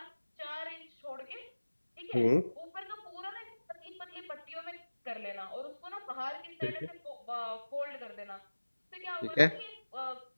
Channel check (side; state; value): both; inverted; correlation -1.00